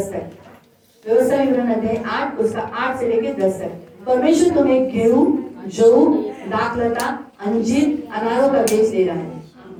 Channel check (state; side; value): identical; both; correlation 1.00